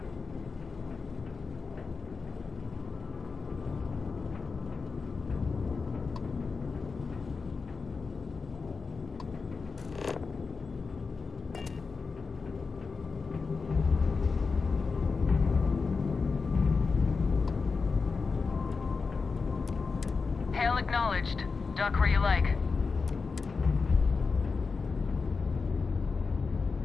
Hail acknowledged. Dock where you like.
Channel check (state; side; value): quieter; right; 4.7 dB